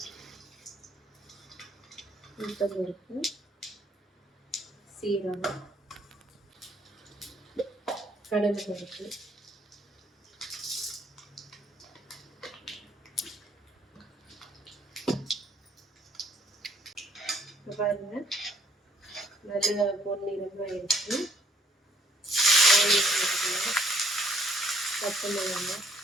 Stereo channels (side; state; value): both; normal; correlation 0.64